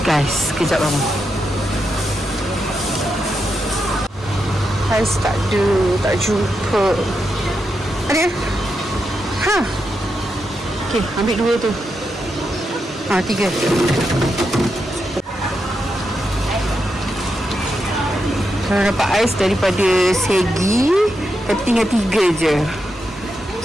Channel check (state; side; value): normal; both; correlation 0.85